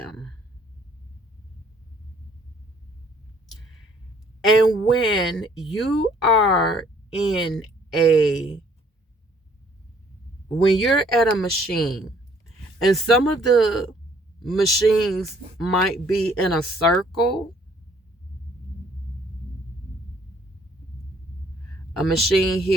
And when you are when you're at a machine, and some of the machines might be in a circle, a machine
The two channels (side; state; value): both; normal; correlation 0.61